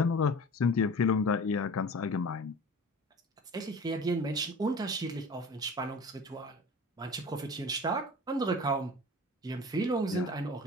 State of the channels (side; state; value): both; normal; correlation 0.39